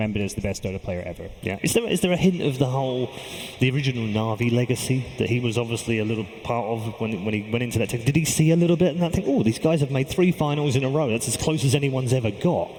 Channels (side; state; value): both; identical; correlation 1.00